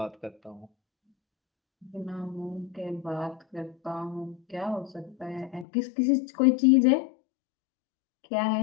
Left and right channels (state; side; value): drops out; right; at 5.7 s